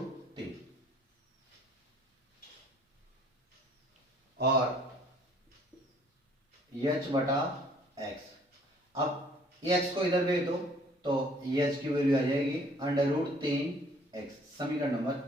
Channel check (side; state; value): both; normal; correlation 0.58